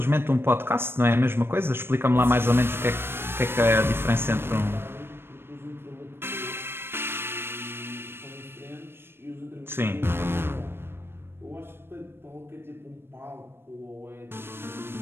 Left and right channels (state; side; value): late; left; 0.11 ms